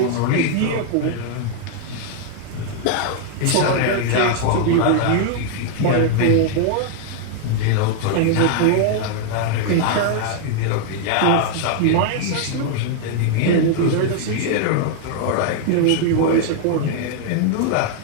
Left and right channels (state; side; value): different; both; correlation 0.00